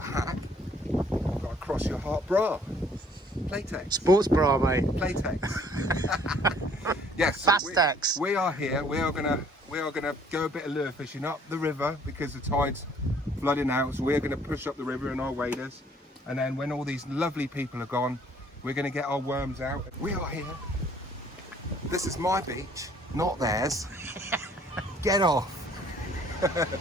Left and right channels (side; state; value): both; normal; correlation 0.60